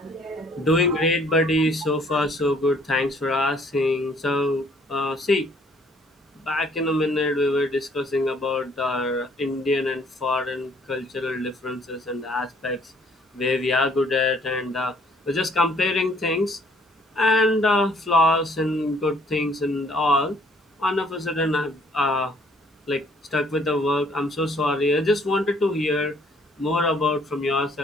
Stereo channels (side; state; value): both; normal; correlation 0.62